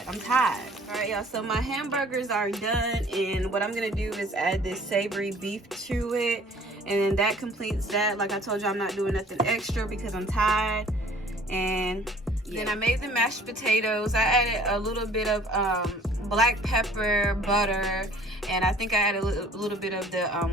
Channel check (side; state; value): both; normal; correlation 0.52